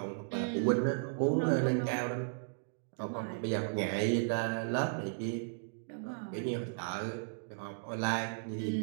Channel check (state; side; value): silent; left; digital silence